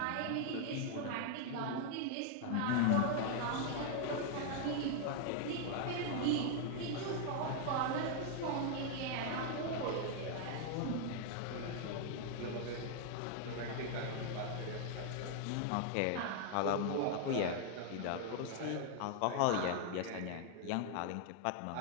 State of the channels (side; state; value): both; different; correlation 0.00